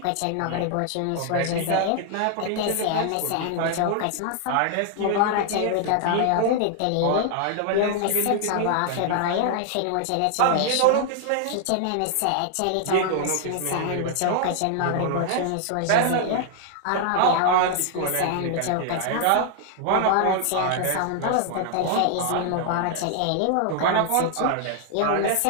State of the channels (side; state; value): both; different; correlation 0.00